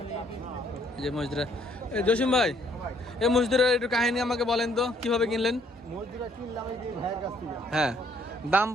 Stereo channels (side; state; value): both; normal; correlation 0.65